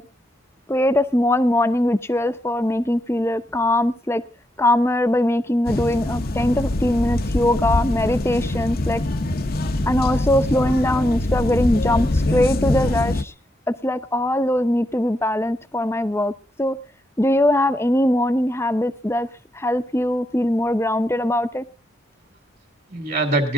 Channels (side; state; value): both; normal; correlation 0.82